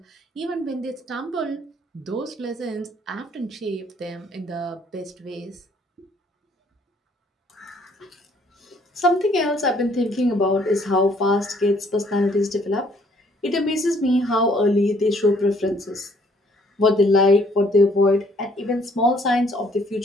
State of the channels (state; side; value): normal; both; correlation 0.63